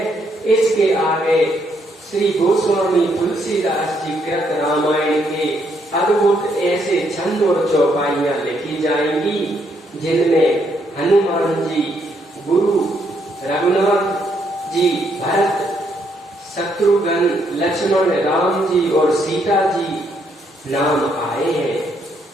इसके आगे श्री गोस्वामी तुलसीदास जी कृत रामायण के अद्भुत ऐसे छंद और चौपाइयां लिखी जाएंगी, जिनमें हनुमान जी, गुरु रघुनाथ जी, भरत, शत्रुघ्न, लक्ष्मण, राम जी और सीता जी नाम आए हैं।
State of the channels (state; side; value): normal; both; correlation 0.73